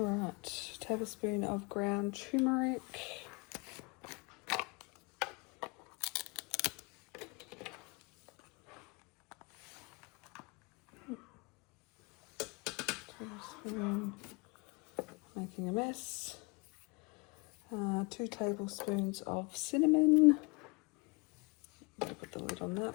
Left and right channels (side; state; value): right; quieter; 29.1 dB